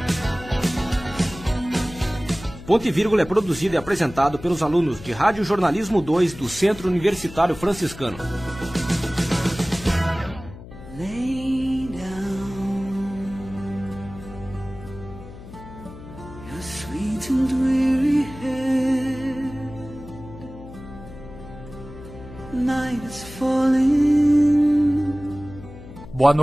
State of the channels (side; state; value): left; noise; hum, 15 dB below the sound